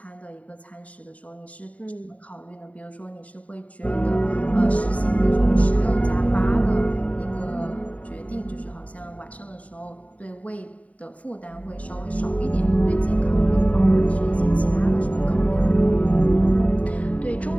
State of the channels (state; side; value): late; right; 0.068 ms